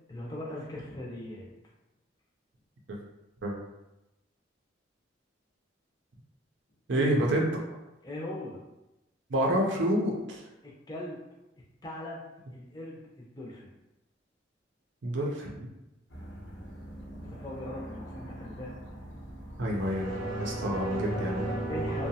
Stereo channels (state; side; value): normal; both; correlation 0.48